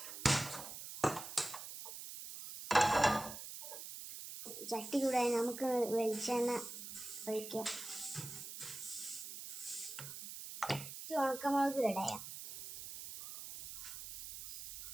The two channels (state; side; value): noise; right; hiss, 10 dB below the sound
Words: ചട്ടി ചൂടായി നമുക്ക് വെളിച്ചെണ്ണ ഒഴിക്കാം. ഉണക്കമുളക് ഇടയാം,